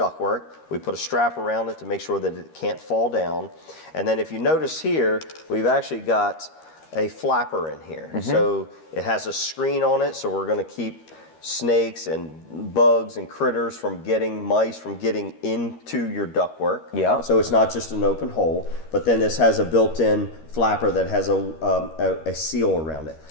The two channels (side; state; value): right; late; 13 ms